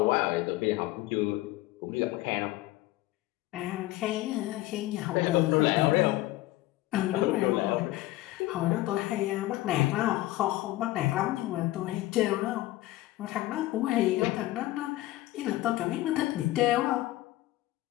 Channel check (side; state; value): right; quieter; 17.1 dB